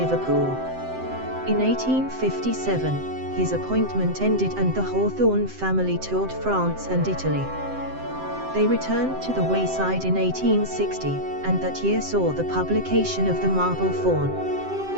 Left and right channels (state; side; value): late; left; 7.7 ms